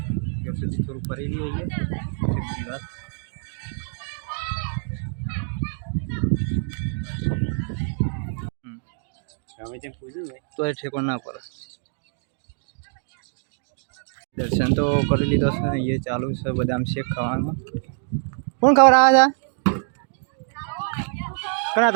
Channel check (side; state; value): left; silent; digital silence